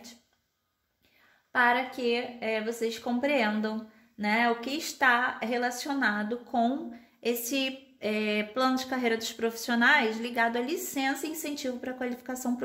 para que vocês compreendam, né, o que está relacionado com esse plano de carreira dos profissionais ligado à licença e incentivo para a qualificação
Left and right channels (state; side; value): identical; both; correlation 1.00